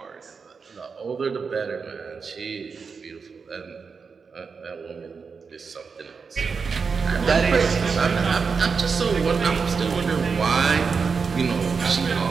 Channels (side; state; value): left; quieter; 5.3 dB